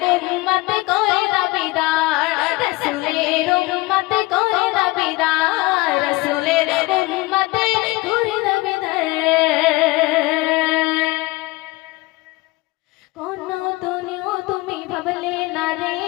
উম্মত করে দাবিদার, রাসূলের উম্মত করে দাবিদার, রাসূলের উম্মত করে দাবিদার। কোন দুনিয়া তুমি ভাবলে না রে,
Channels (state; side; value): quieter; right; 21.8 dB